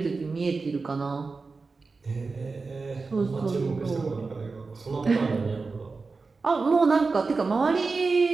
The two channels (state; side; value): quieter; left; 4.2 dB